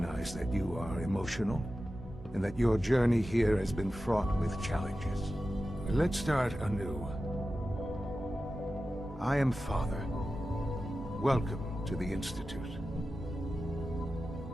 that you are emotional, and that your journey here has been fraught with challenges. Let's start anew. I am Father. Welcome to the Institute.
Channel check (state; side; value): normal; both; correlation 0.93